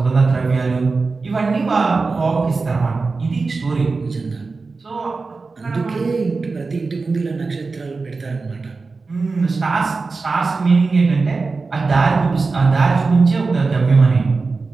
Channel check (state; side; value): quieter; left; 4.1 dB